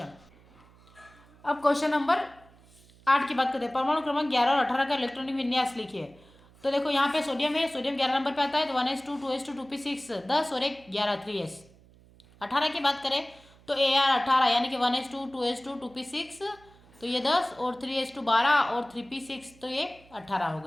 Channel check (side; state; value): right; noise; hum, 26 dB below the sound